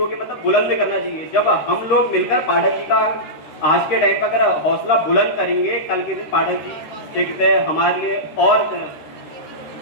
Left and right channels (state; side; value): late; right; 13 ms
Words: मतलब बुलंद करना चाहिए। जब हम लोग मिलकर पाठक जी का आज के टाइम पर अगर हौसला बुलंद करेंगे, कल के दिन पाठक जी देखते हैं हमारे लिए और